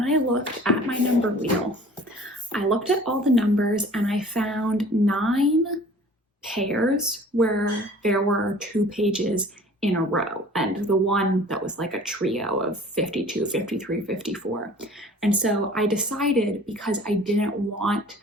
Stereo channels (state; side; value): normal; both; correlation 0.48